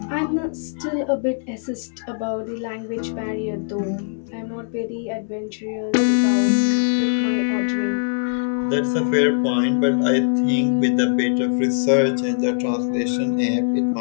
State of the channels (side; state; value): right; silent; digital silence